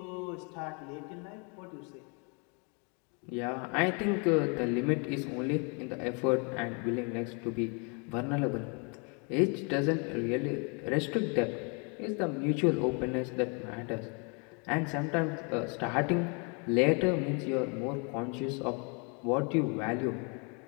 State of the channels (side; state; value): right; quieter; 34.7 dB